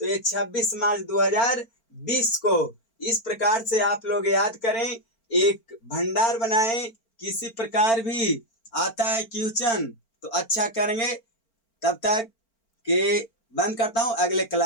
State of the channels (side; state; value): right; late; 4.4 ms